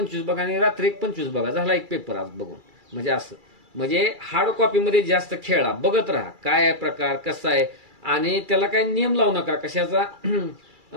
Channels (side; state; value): left; late; 2.3 ms